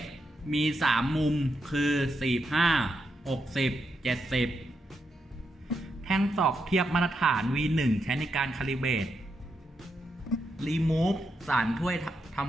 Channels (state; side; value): normal; both; correlation 0.83